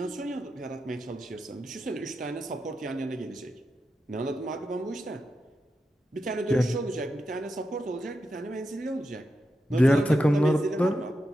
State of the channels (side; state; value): both; normal; correlation 0.88